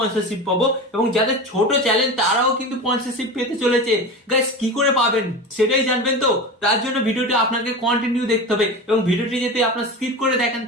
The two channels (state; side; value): normal; both; correlation 0.27